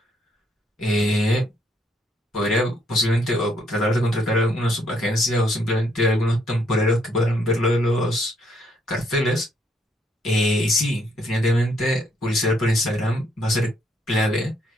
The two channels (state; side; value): normal; both; correlation 0.71